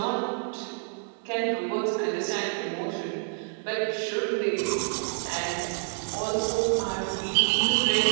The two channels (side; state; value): left; silent; 59 dB below the other